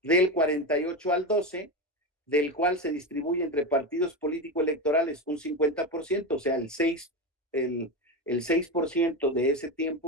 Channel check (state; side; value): normal; both; correlation 0.18